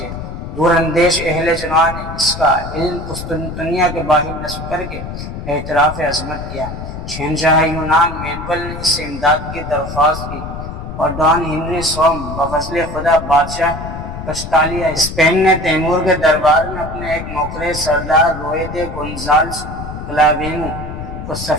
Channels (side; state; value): left; noise; rumble, 8 dB below the sound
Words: دور اندیش اہل جنوب نے اس کا علم قسطنطنیہ کے باہر نصب کر کے اعتراف عظمت کیا۔ شہنشاہ یونان مینول نے اس سے امداد کی درخواست کی، اور ڈان ہنری سوم بفضل خدا بادشاہ کسٹالیا اسپین نے تیمور کے دربار میں اپنے ایک نوکر سردار روئے گونزالس کلاوینو کو